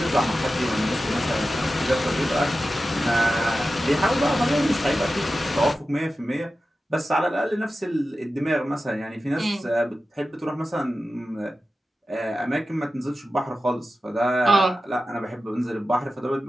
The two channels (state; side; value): normal; both; correlation 0.93